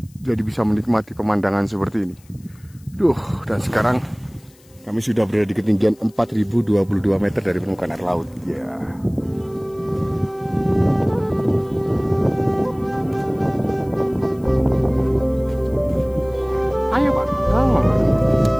Jadi bisa menikmati pemandangan seperti ini. Dan sekarang kami sudah berada di ketinggian 4022 meter dari permukaan air laut. Ya. Ayo Pak,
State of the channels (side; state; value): left; noise; hiss, 29 dB below the sound